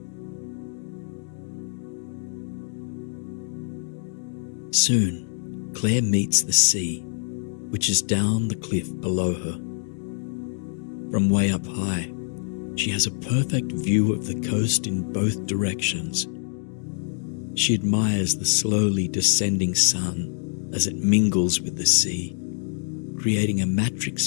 Soon, Claire meets the sea, which is down the cliff below her. From way up high, she has a perfect view of the coast in both directions. She admires the slowly descending sun as it mingles with the sea, creating a matrix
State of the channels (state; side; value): silent; right; digital silence